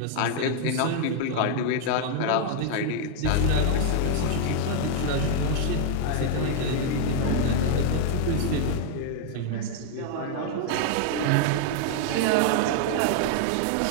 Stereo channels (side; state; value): both; different; correlation 0.00